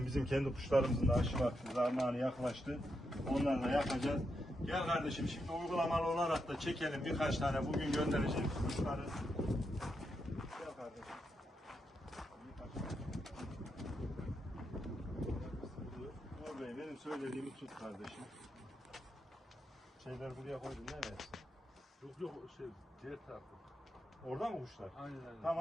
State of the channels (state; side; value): normal; both; correlation 0.84